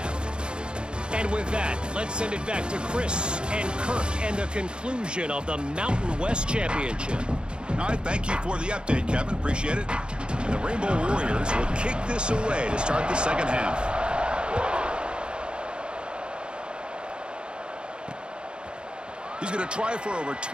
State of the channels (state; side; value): late; left; 0.052 ms